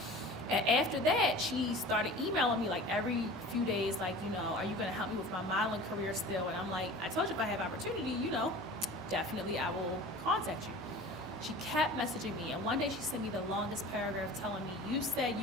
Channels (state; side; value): normal; both; correlation 0.40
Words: And after that, she started emailing me like every few days, like, you know, are you going to help me with my modeling career still? And I'm like, I told you if I have opportunity, you know, definitely I will contact you. She kept messaging me, and one day she sent me the longest paragraph telling me, you said